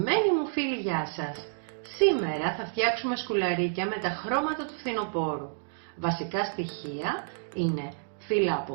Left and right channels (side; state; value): left; silent; digital silence